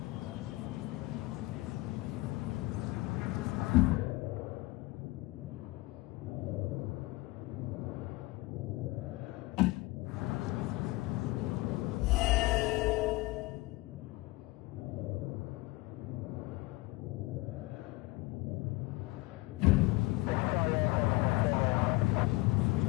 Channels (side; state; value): right; quieter; 21.1 dB